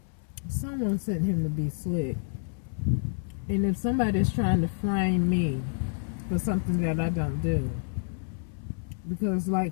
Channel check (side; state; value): right; silent; 59 dB below the other